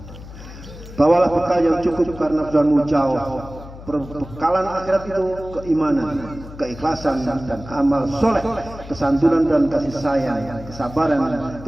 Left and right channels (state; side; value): noise; left; hum, 15 dB below the sound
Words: Bawalah bekal yang cukup karena perjalananmu jauh. Perbekalan akhirat itu keimanan, keikhlasan dan amal soleh, kesantunan dan kasih sayang, kesabaran,